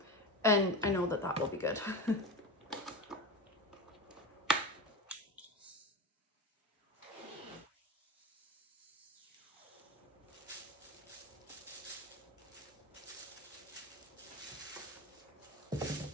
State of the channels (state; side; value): normal; both; correlation 0.24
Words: And I know that that will be good.